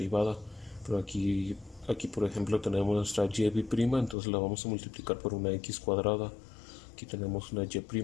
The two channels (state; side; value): drops out; right; at 4.2 s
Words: Pero aquí por ejemplo tenemos nuestra y', entonces la vamos a multiplicar por una x cuadrada. Aquí tenemos una y',